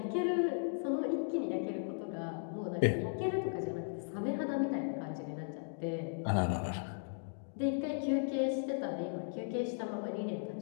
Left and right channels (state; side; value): silent; right; digital silence